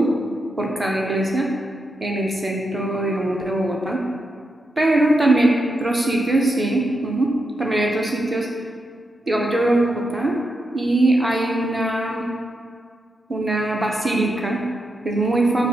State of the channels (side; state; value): both; normal; correlation 0.85